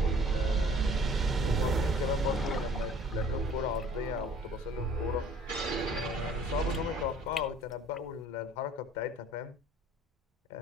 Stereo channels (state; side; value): normal; both; correlation 0.52